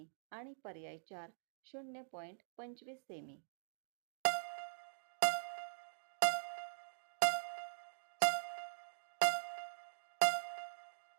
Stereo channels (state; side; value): silent; left; digital silence